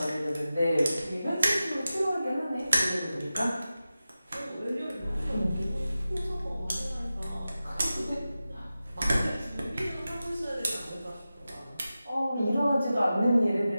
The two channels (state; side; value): inverted; both; correlation -0.94